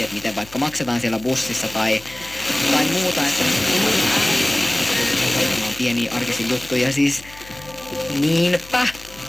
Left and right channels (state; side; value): noise; left; hum, 21 dB below the sound